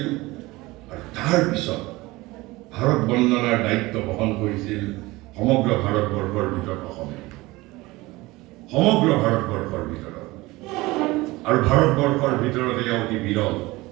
আৰু তাৰ পিছত ভাৰত বন্দনাৰ দায়িত্ব বহন কৰিছিল সমগ্ৰ ভাৰতবৰ্ষৰ ভিতৰত অসমে সমগ্ৰ ভাৰতবৰ্ষৰ ভিতৰত আৰু ভাৰতবৰ্ষৰ ভিতৰত এয়া অতি বিৰল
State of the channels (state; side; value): quieter; left; 20.7 dB